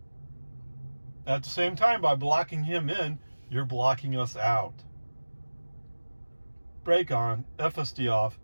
At the same time, by blocking him in, you're blocking us out. Brake on, FSD off.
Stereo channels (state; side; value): inverted; both; correlation -1.00